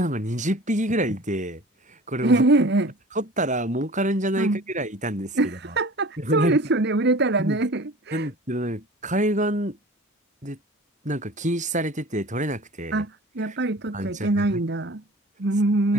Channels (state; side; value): normal; both; correlation 0.42